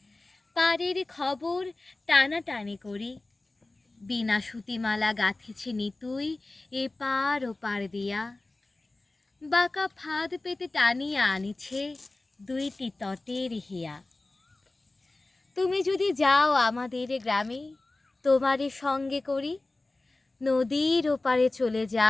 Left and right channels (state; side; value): quieter; right; 3.0 dB